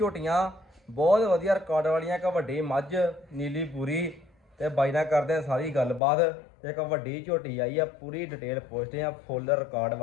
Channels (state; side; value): drops out; right; at 6.0 s